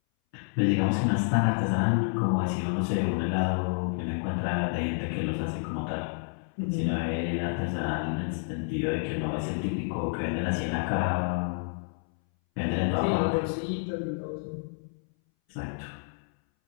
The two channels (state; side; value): silent; right; 59 dB below the other